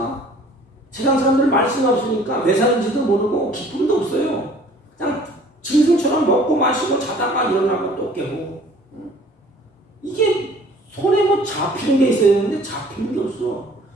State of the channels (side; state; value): both; normal; correlation 0.53